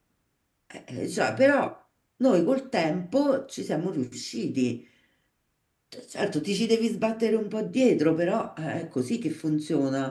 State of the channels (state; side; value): identical; both; correlation 1.00